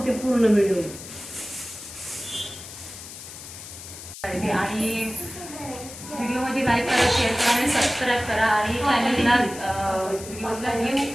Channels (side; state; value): left; noise; hiss, 13 dB below the sound